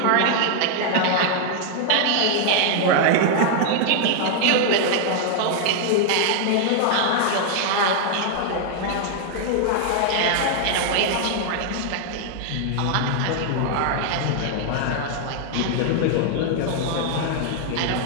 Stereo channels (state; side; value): different; both; correlation 0.00